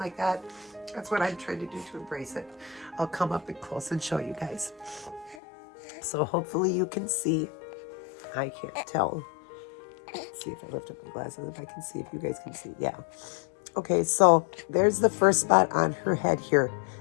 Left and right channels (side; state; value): right; drops out; at 5.4 s